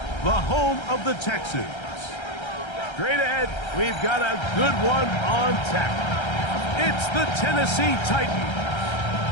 the home of the Texans. Straight ahead, we've got a good one on tap. It's the Tennessee Titans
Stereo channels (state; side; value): late; right; 1.3 ms